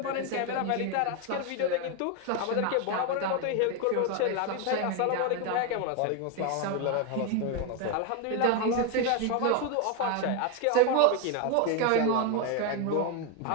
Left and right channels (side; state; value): both; different; correlation 0.01